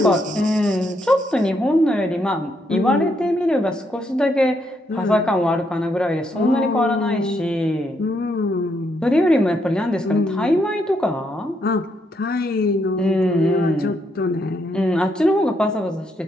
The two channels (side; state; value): both; normal; correlation 0.76